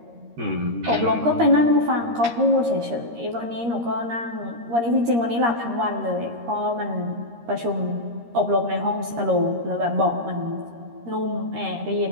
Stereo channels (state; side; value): late; left; 13 ms